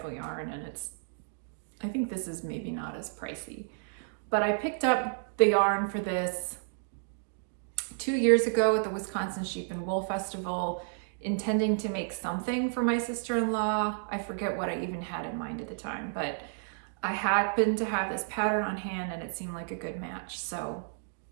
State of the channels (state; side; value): silent; left; digital silence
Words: yarn, and I think this is maybe not as pricey. But I picked up the yarn for this 2 years ago at the Wisconsin Sheep and Wool Festival, intending to make something for my sister-in-law. I forget what I even had in mind at the time, but I happened to have this pattern on hand and it seemed like a good match. So